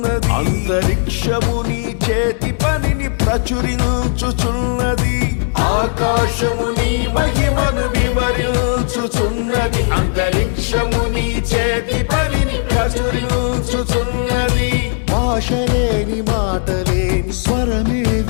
అంతరిక్షము నీ చేతి పనిని ప్రచురించుచున్నది. ఆకాశము నీ మహిమను వివరించుచున్నది, అంతరిక్షము నీ చేతి పనిని ప్రచురించుచున్నది. భాషలేని మాటలేని స్వరమే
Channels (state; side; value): silent; right; digital silence